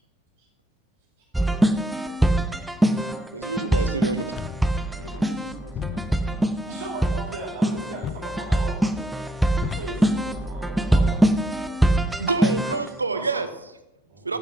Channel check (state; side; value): normal; both; correlation 0.72